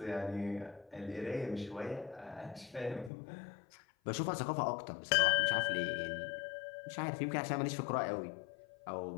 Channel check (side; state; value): right; drops out; at 3.1 s